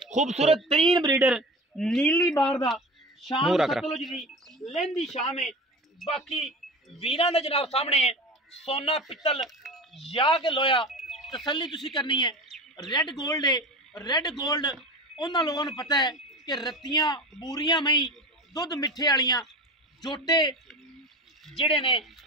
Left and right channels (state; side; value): normal; both; correlation 0.31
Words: खूबसूरत तरीन ब्रीडर नीली बार दा शाम सतलुज दी लहंदी शाम है। बाकी वीरां दा जनाब सामने है सोना पित्तल या के लोया तसल्ली तुसी करनी है। रेड गोल्ड है, रेड गोल्ड उन्हां लोगों नूं पता है कि रत्तियां बूरियां मई दुध मिठे वालियां जोटे जेडे ने